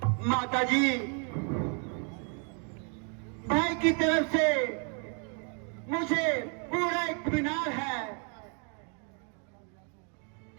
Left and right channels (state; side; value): quieter; left; 39.8 dB